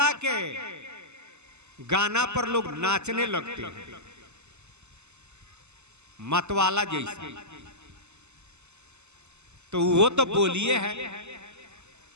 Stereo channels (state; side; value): late; left; 0.82 ms